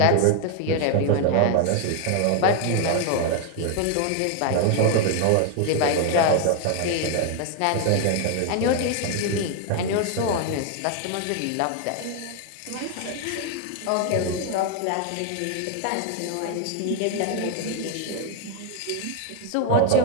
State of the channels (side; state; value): both; different; correlation 0.01